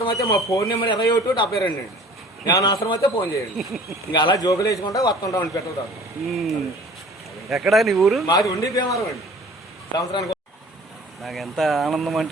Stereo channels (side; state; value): both; normal; correlation 0.48